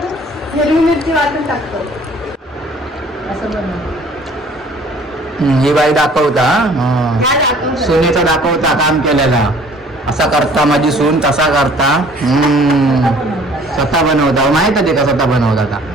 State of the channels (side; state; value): both; normal; correlation 0.53